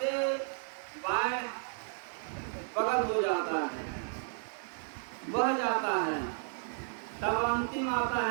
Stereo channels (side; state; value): left; silent; digital silence